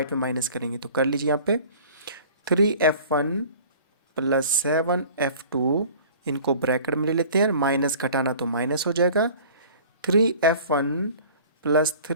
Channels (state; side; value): inverted; both; correlation -0.46